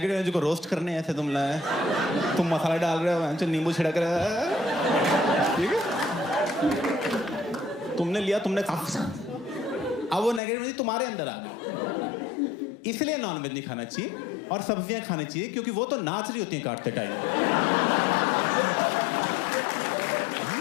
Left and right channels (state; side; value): drops out; right; at 10.4 s